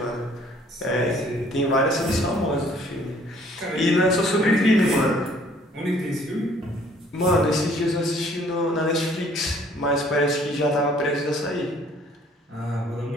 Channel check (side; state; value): both; normal; correlation 0.58